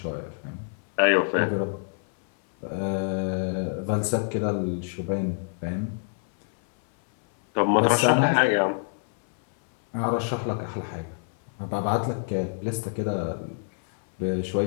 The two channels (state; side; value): silent; right; 61 dB below the other